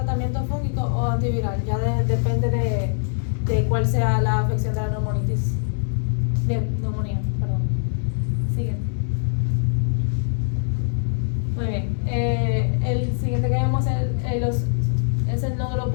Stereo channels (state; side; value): silent; right; 61 dB below the other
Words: fúngico o antiviral, ya depende de cuál sea la afección de la neumonía. Siguiente. Muy bien. El siguiente que vemos es los